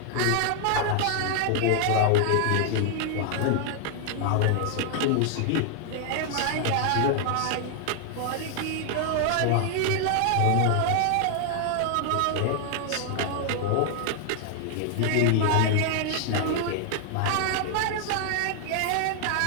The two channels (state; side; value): different; both; correlation 0.00